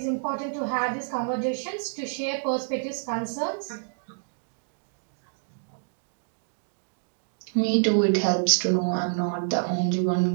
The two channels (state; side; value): silent; left; digital silence